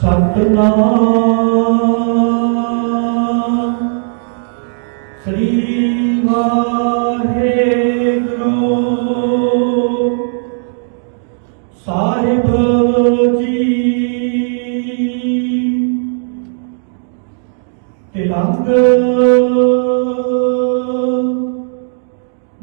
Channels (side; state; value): left; silent; digital silence